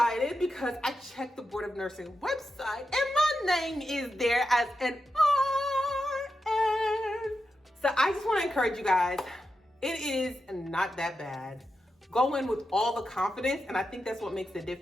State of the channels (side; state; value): both; normal; correlation 0.88